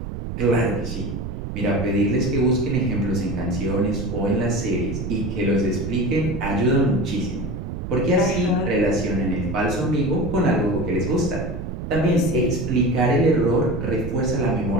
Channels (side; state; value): right; noise; rumble, 6 dB below the sound